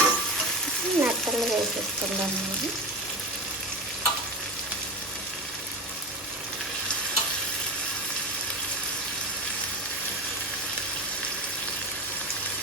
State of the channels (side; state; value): both; normal; correlation 0.24